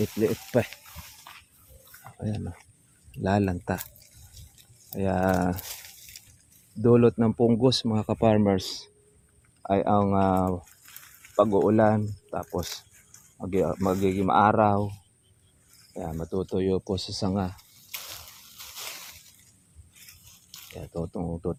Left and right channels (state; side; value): identical; both; correlation 1.00